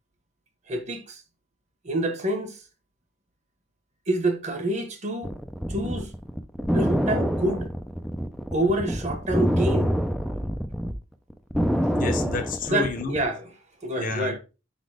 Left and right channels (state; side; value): normal; both; correlation 0.68